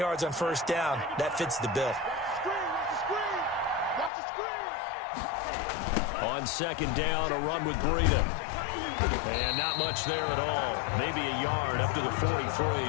on first down, that fits the bill. On second down, a run with Breida. And not much there at all. Maybe a yard up to the 43.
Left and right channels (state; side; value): drops out; right; at 4.1 s